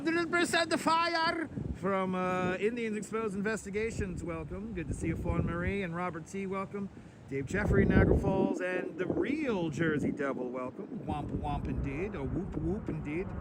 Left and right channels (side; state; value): both; identical; correlation 1.00